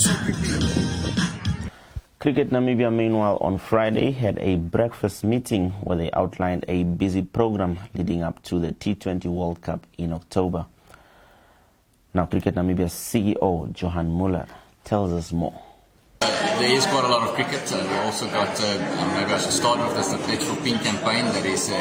prepared. Cricket Namibia, meanwhile, on Friday had a breakfast meeting where they outlined a busy program leading up to the T20 World Cup in October. Now, Cricket Namibia's CEO, Johan Muller, tells us more. There is quite a lot of cricket. We also got, maybe I should start with this, the Pledge for Pink campaign that is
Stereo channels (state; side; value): identical; both; correlation 1.00